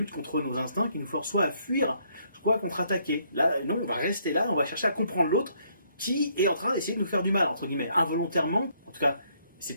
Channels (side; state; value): both; inverted; correlation -0.69